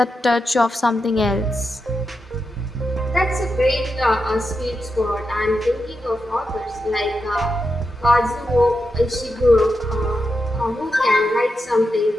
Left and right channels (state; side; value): normal; both; correlation 0.87